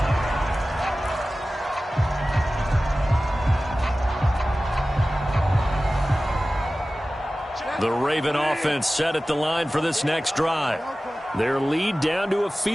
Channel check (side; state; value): both; normal; correlation 0.96